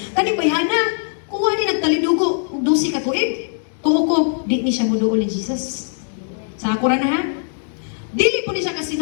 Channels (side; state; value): right; silent; 66 dB below the other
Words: kani bayana kuha ni nagtalidugo og 12 ka tuig. Tuo ko di ni siya moduol ni Jesus. Sa ako ra na ha. Dili po ni siya